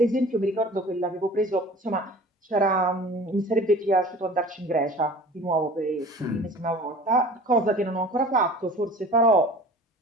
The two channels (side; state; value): both; normal; correlation 0.43